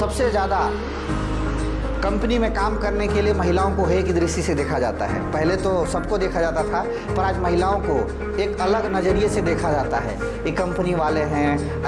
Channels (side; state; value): both; identical; correlation 1.00